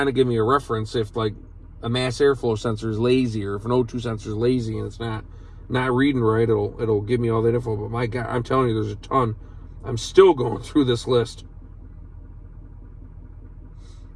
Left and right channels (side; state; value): both; identical; correlation 1.00